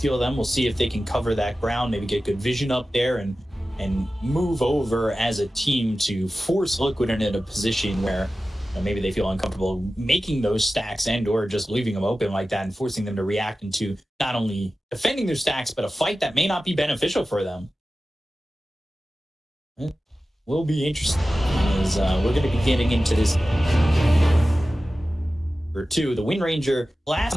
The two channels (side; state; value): both; normal; correlation 0.95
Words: them. We'll see if they can cover that ground, maybe get good vision up there and move over as a team to force Liquid into a position where maybe they feel uncomfortable making those stacks and or just leaving them open like that and forcing them to react into not only defending their stacks, but a fight that may not be beneficial for them. It will be interesting as we're going to be getting into this. Or two, the Wind Ranger last,